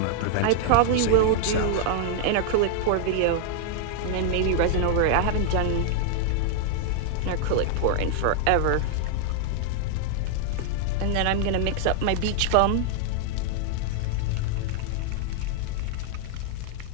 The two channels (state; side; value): different; both; correlation 0.00